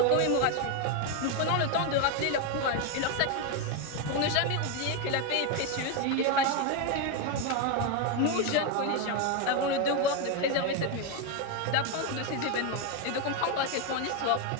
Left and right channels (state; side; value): different; both; correlation 0.02